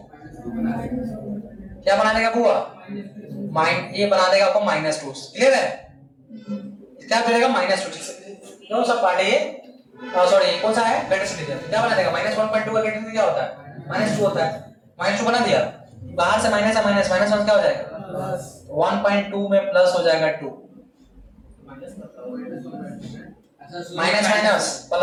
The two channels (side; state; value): both; identical; correlation 1.00